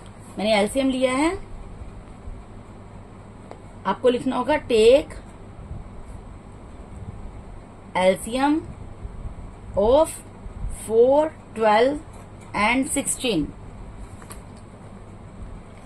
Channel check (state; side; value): identical; both; correlation 1.00